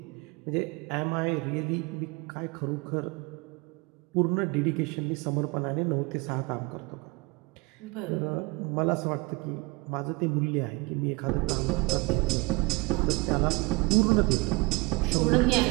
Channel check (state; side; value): quieter; left; 25.1 dB